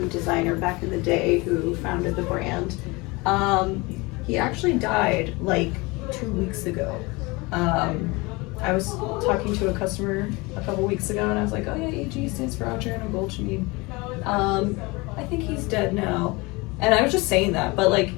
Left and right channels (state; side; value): quieter; right; 24.8 dB